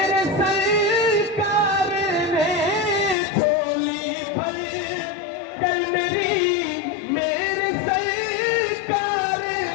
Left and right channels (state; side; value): drops out; right; at 3.2 s